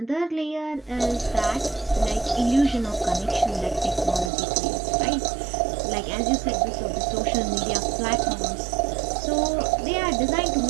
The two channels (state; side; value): drops out; left; at 4.3 s